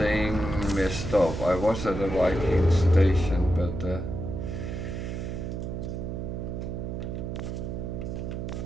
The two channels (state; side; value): noise; right; hum, 5 dB below the sound